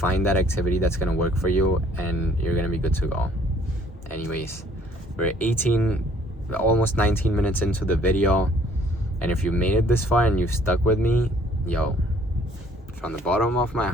that activity that's going to work for you, and you're going to be good to go. Anyways, we're almost 19 minutes into the video, and if you made it this far and you've stuck with me, yo, from the bottom of my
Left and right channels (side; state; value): both; normal; correlation 0.60